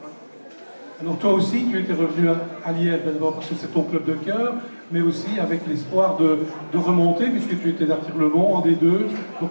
Alors toi aussi, tu étais revenu à Liège, d'abord parce que c'est ton club de cœur, mais aussi avec l'espoir de remonter, puisque tu étais d'Artigues-le-Mont en D2.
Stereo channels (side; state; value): both; inverted; correlation -1.00